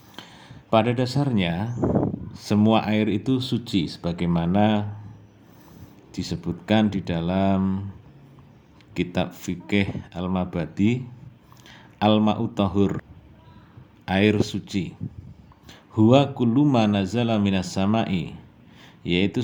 Pada dasarnya, semua air itu suci sebagaimana disebutkan di dalam kitab fikih Al-Mabadi, Al-Ma'u Tahur, air suci. Huwa kullu ma nazala minas sama'i,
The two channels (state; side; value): identical; both; correlation 1.00